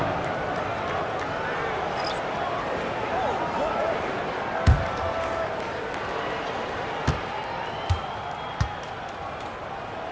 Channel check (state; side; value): identical; both; correlation 1.00